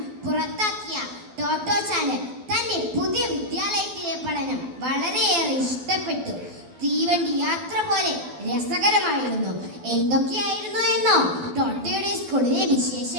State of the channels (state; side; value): late; left; 12 ms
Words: പുറത്താക്കിയ ടോട്ടോ ചാന് തന്റെ പുതിയ വിദ്യാലയത്തിലെ പഠനം വളരെയേറെ ഇഷ്ടപ്പെട്ടു. തീവണ്ടി യാത്ര പോലെ രസകരമായിരുന്നു. എന്തൊക്കെയായിരുന്നു എന്നോ? ടോട്ടോയുടെ സ്കൂളിലെ